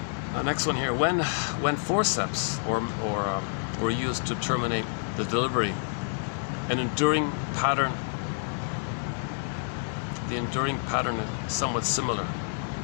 Yeah. Next one here. When forceps were used to terminate the delivery, the enduring pattern is somewhat similar.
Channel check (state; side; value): silent; right; digital silence